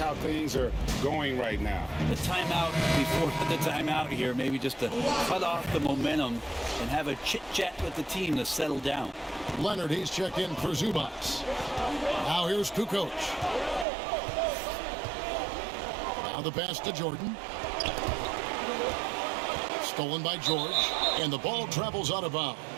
things are going right now. The timeout before the timeout here, maybe just to cut off the momentum and have a chit-chat with the team to settle down. Leonard, he's checked in for Zubats. Now here's Kukoc. Now the pass to Jordan. Stolen by George, and the ball travels out of bounds.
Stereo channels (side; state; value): left; drops out; at 13.9 s